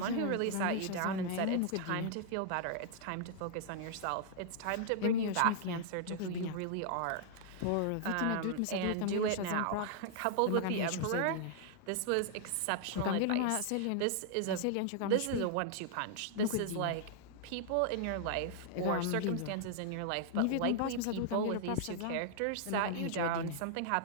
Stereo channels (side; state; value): both; different; correlation -0.01